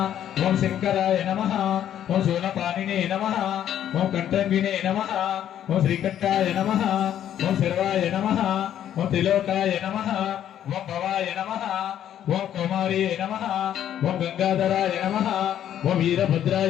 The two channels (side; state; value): right; quieter; 10.7 dB